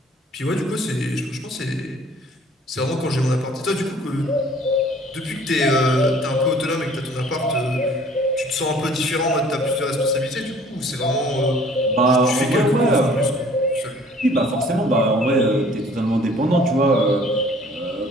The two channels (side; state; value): both; normal; correlation 0.54